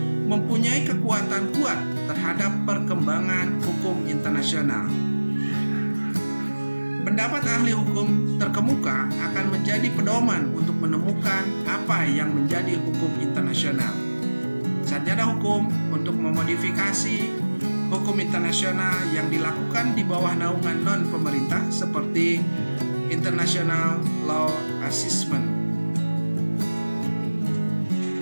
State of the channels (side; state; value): both; inverted; correlation -1.00